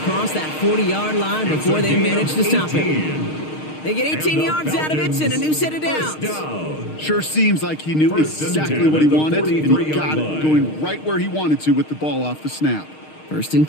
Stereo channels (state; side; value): late; right; 6.5 ms